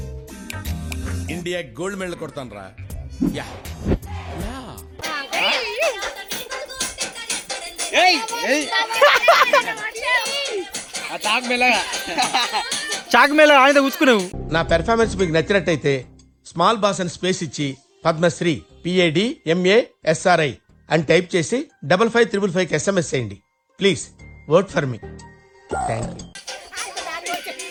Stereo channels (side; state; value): both; identical; correlation 1.00